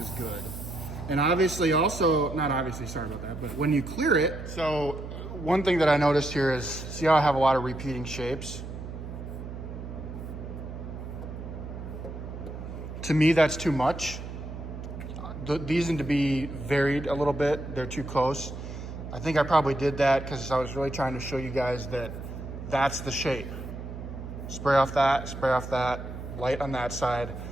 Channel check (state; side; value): noise; right; hum, 9 dB below the sound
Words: good. And obviously also, not obviously, sorry about that, but when you clear it, so one thing that I noticed here is, see how I have a lot of repeating shapes? To me, that's too much. These need to be varied a little bit, they're too close. I think I probably did that because I was really trying to show you guys that that's the shape. Spray off that, light on that side,